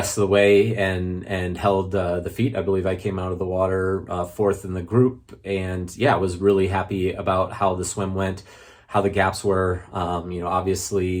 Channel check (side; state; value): both; identical; correlation 1.00